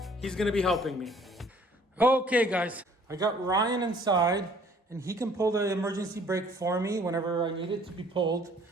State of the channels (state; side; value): normal; both; correlation 0.57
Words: He's gonna be helping me. Okay guys, I got Ryan inside and he can pull the emergency brake for me whenever I need it to be pulled.